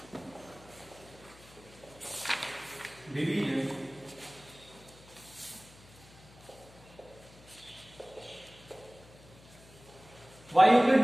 division by Euclid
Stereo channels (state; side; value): noise; left; hum, 23 dB below the sound